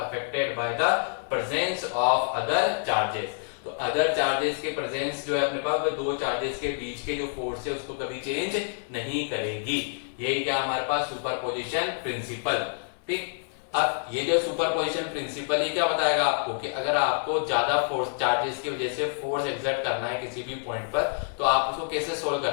by the presence of other charges. तो अदर चार्जेस के प्रेजेंस जो है अपने पास, वो दो चार्जेस के बीच के जो फोर्स है उसको कभी चेंज नहीं करेगी। यही क्या हमारे पास सुपरपोजिशन प्रिंसिपल। ठीक, अब ये जो सुपरपोजिशन प्रिंसिपल ही क्या बताएगा आपको कि अगर आपको ज्यादा फोर्स चार्जेस की वजह से फोर्स एक्सर्ट करना है किसी भी पॉइंट पर, तो आप उसको कैसे सोल्व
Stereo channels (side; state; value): right; silent; digital silence